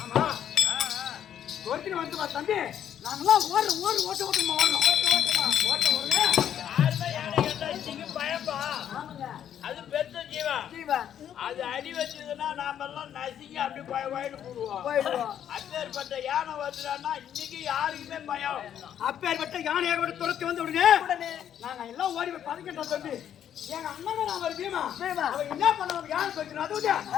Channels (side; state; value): right; quieter; 9.8 dB